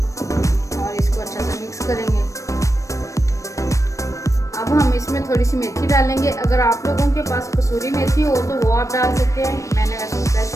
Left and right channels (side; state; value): right; late; 0.15 ms